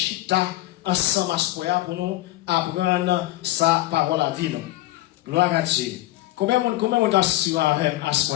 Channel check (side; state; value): right; quieter; 16.5 dB